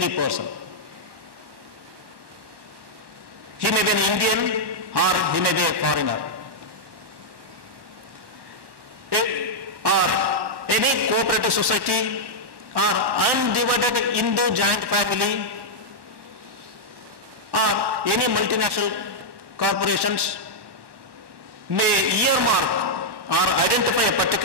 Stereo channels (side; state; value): left; late; 1.2 ms